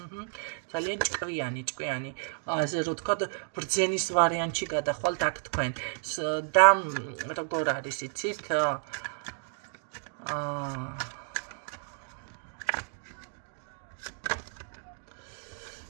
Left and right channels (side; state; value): left; silent; 57 dB below the other